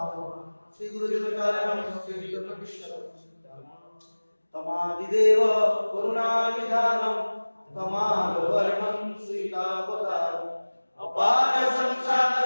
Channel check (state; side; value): inverted; both; correlation -1.00